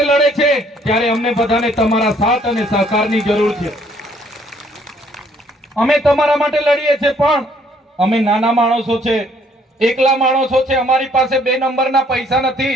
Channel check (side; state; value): both; normal; correlation 0.64